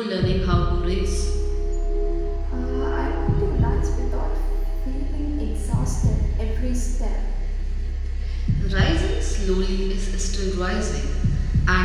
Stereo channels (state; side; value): identical; both; correlation 1.00